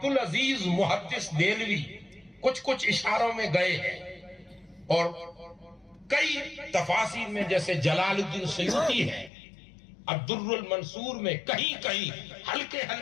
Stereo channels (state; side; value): drops out; right; at 9.3 s